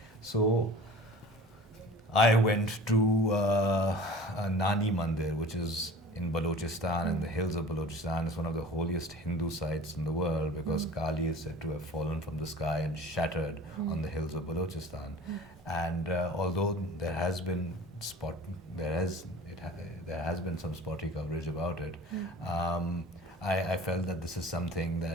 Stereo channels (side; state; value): both; normal; correlation 0.42